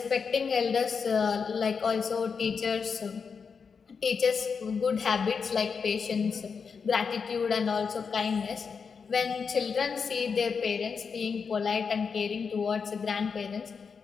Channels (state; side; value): quieter; right; 5.7 dB